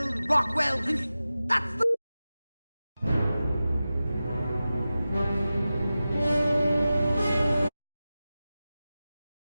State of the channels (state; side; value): inverted; both; correlation -0.95